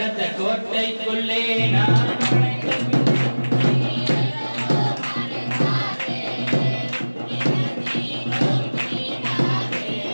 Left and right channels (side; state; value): both; inverted; correlation -1.00